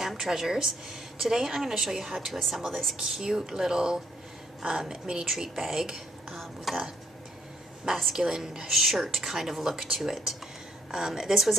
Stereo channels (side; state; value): both; normal; correlation 0.68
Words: Treasures. Today I'm going to show you how to assemble this cute little mini treat bag with a masculine shirt kind of look to it. This was